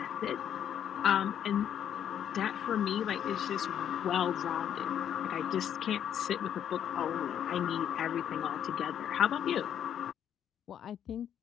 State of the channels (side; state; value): right; quieter; 9.5 dB